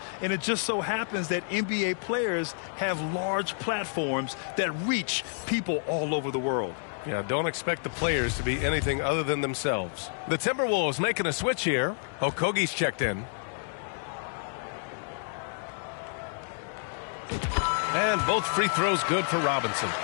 And it just so happens that NBA players have large platforms that reach people all over the world. Yeah, don't expect the players to be anything other than themselves. The Timberwolves making a switch here. Okogie's checked in. And both free throws good for Robinson.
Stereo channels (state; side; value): silent; right; digital silence